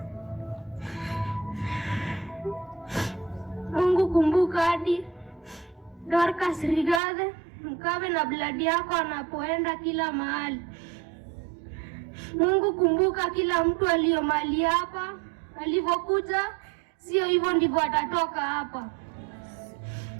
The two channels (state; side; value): drops out; left; at 7.0 s